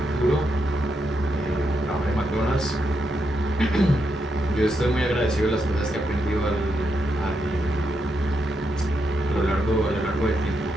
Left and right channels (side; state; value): both; normal; correlation 0.82